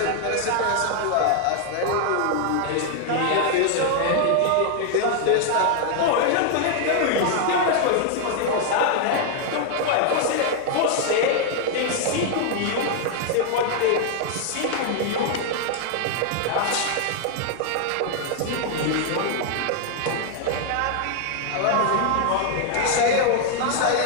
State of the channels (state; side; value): different; both; correlation 0.00